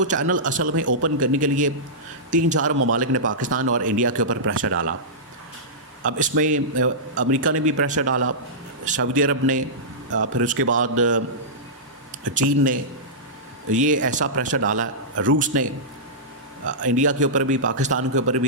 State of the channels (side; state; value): both; normal; correlation -0.15